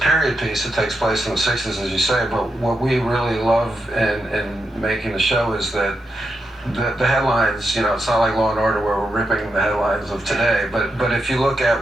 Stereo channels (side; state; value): both; normal; correlation 0.85